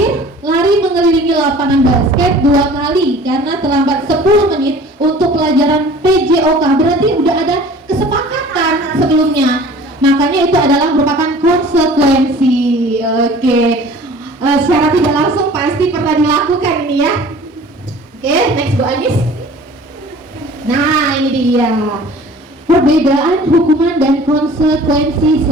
lari mengelilingi lapangan basket 2 kali karena terlambat 10 menit untuk pelajaran PJOK, berarti udah ada kesepakatan sebelumnya, makanya itu adalah merupakan konsekuensi. Oke, secara tidak langsung pasti pernah dilakukan ini ya. Oke, next Bu Anis. Nah, ini dia perbedaan hukuman dan konsekuensi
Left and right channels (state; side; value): normal; both; correlation 0.46